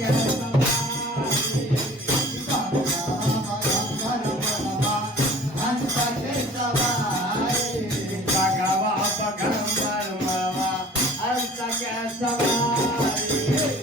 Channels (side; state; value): both; normal; correlation 0.47